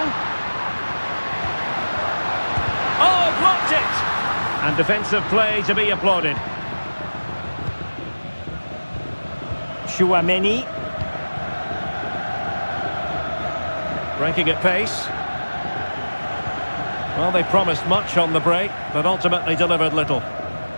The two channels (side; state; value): both; inverted; correlation -1.00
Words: Oh, blocked it! And defensive play to be applauded. Chouameni. Breaking at pace. Well, they promised much on the break, but ultimately delivered little.